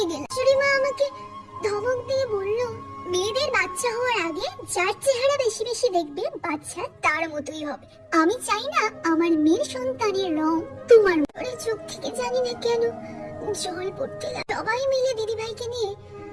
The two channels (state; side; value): identical; both; correlation 1.00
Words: গেলাম। শাশুড়িমা আমাকে ধমক দিয়ে বলল, মেয়েদের বাচ্চা হওয়ার আগে যার চেহারা বেশি বেশি দেখবে বাচ্চা তার মতোই হবে। আমি চাই না আমার মেয়ের সন্তানের রং তোমার মতো। চোখ থেকে জানি না কেন জল পড়তে লাগলো। সবাই মিলে দিদি ভাইকে নিয়ে